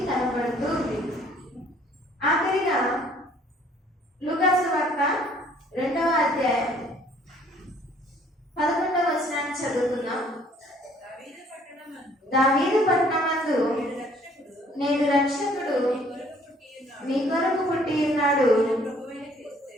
కనబడుతూ ఉంది. ఆఖరిగా లూకా సువార్త 2వ అధ్యాయం 11వ వచనాన్ని చదువుతున్నాం. దావీదు పట్టణమందు నేడు రక్షకుడు మీ కొరకు పుట్టి ఉన్నాడు,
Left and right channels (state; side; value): normal; both; correlation 0.59